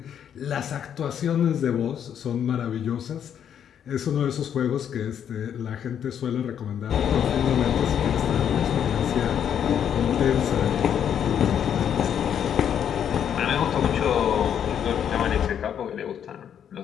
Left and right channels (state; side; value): quieter; right; 8.9 dB